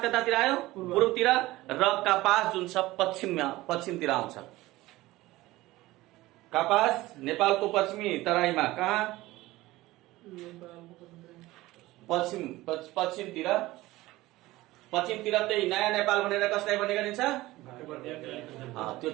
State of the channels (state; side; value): quieter; left; 18.2 dB